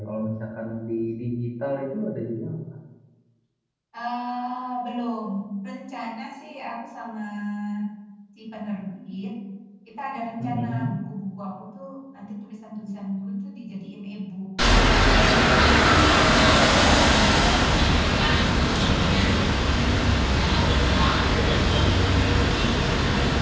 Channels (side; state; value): both; identical; correlation 1.00